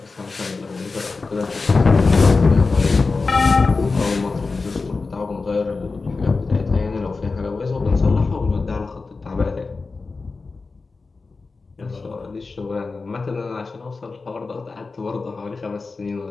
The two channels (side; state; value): right; quieter; 4.1 dB